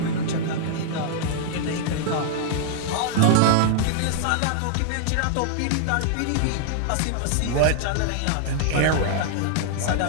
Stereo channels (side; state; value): both; different; correlation 0.00